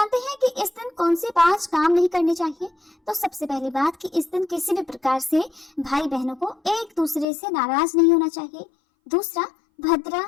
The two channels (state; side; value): drops out; right; at 7.2 s